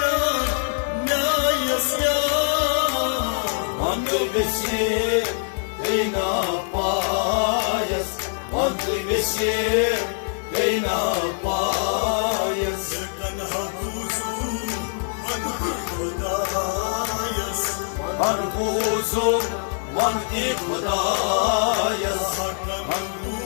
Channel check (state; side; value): silent; right; digital silence